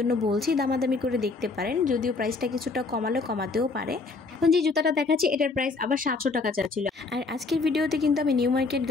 বলছি দামাদামি করে দেখতে পারেন, যদিও প্রাইসটা কিছুটা কমালে কমাতেও পারে। এখন যে জুতাটা দেখাচ্ছি এটার প্রাইস আবার 700 টাকা চাচ্ছিল। আর আজকের ভিডিওতে কিন্তু আমি নিউ মার্কেট,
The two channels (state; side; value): quieter; right; 3.9 dB